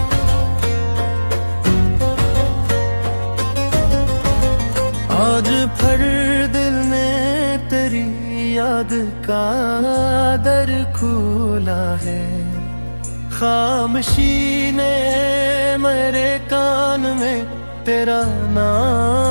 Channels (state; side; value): inverted; both; correlation -1.00